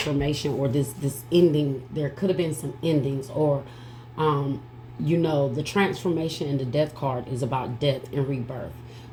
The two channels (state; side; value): identical; both; correlation 1.00